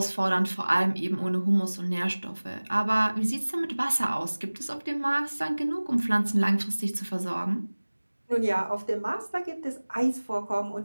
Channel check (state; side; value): inverted; both; correlation -1.00